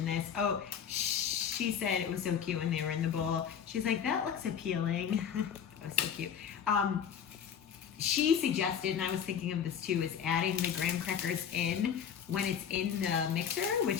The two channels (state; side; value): quieter; right; 8.0 dB